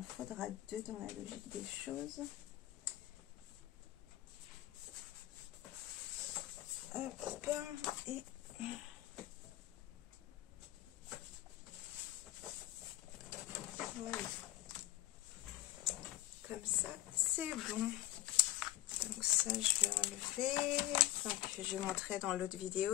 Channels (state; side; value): quieter; right; 15.8 dB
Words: faudra 2 dans la logique des choses. Hop, et voilà. Comme ça, c'est bon. Donc ça, je vais enlever. Donc je montrais dans l'autre